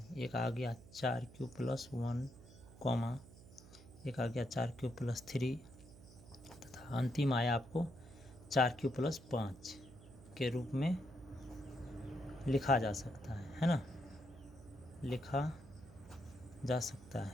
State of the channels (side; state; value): right; noise; hum, 19 dB below the sound